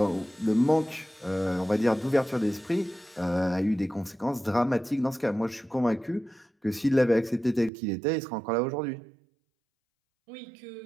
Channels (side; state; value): left; drops out; at 7.7 s